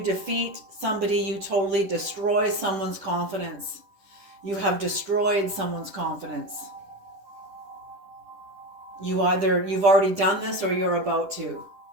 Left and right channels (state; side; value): late; left; 10 ms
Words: defeat somebody, you totally destroy someone's confidence. You have destroyed someone's confidence. You've already done this or you're about to.